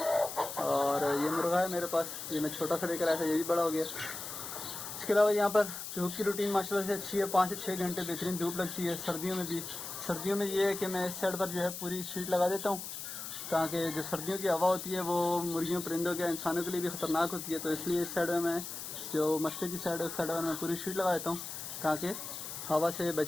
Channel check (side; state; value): left; noise; hiss, 8 dB below the sound